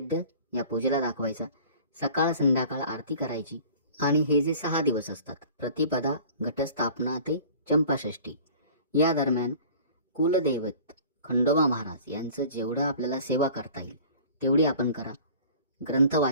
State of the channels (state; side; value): inverted; both; correlation -0.46